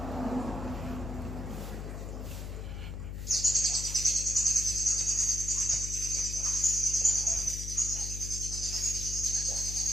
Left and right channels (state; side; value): noise; left; hum, 6 dB below the sound